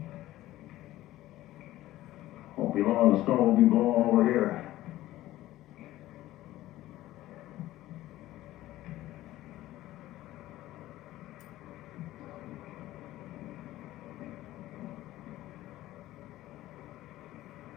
Won't be long, the snow will be blowing over here.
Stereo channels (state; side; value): quieter; right; 15.5 dB